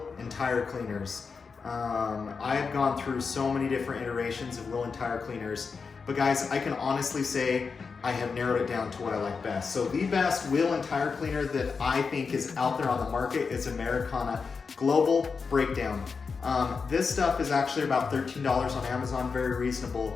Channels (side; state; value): right; quieter; 5.1 dB